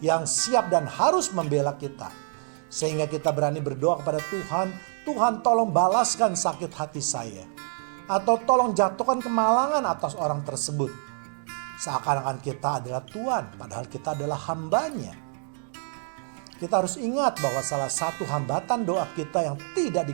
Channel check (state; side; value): silent; left; 60 dB below the other